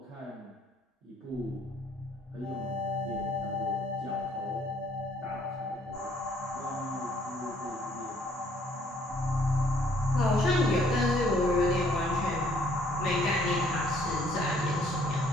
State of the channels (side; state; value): both; normal; correlation 0.64